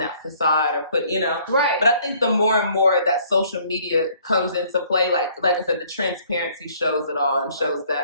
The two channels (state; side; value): inverted; both; correlation -0.59